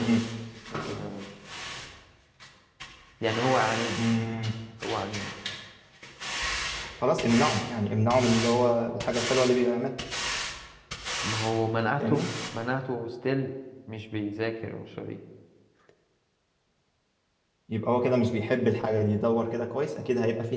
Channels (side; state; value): both; identical; correlation 1.00